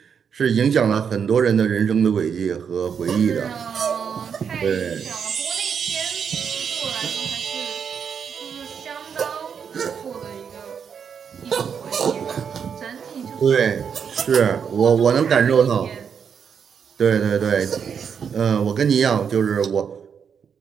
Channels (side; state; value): left; quieter; 7.1 dB